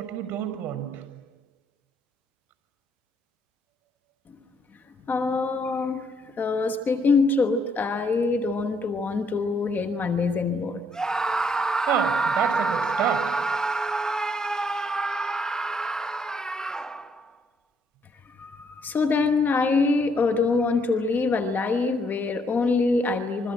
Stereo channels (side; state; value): both; normal; correlation 0.71